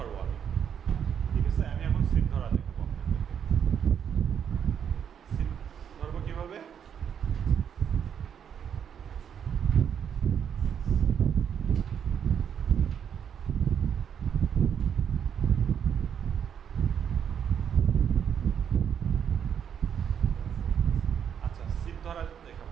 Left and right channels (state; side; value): quieter; left; 8.2 dB